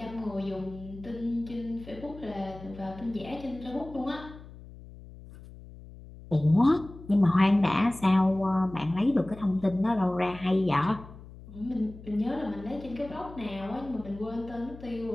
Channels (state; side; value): noise; left; hum, 17 dB below the sound